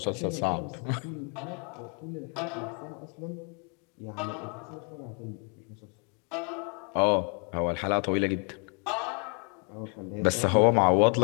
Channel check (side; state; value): right; quieter; 36.9 dB